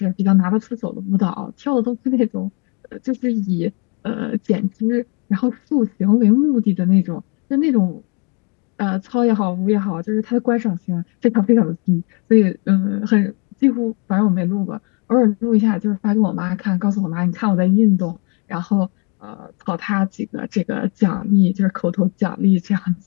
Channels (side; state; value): right; quieter; 32.5 dB